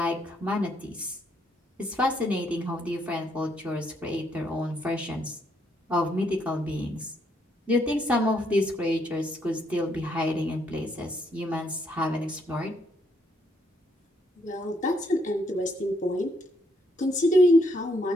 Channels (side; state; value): both; normal; correlation 0.73